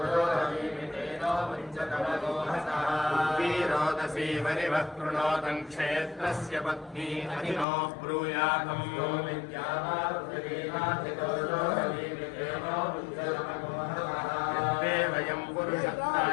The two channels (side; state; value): right; drops out; at 7.7 s